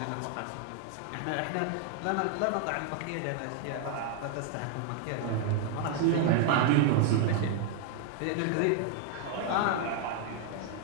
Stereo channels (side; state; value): both; different; correlation 0.00